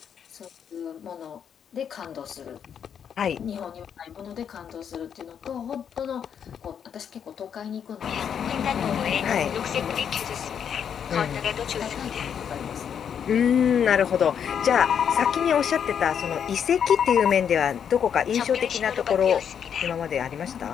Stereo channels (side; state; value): right; quieter; 8.0 dB